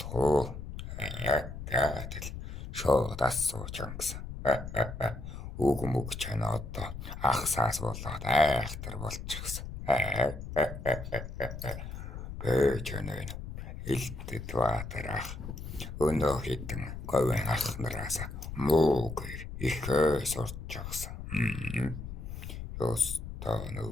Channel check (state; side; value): noise; left; rumble, 8 dB below the sound